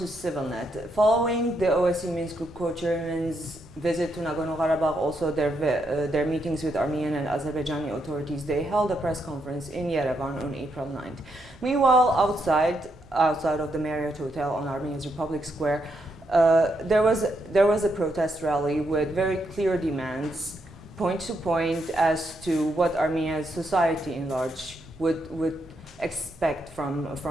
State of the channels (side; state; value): right; noise; rumble, 27 dB below the sound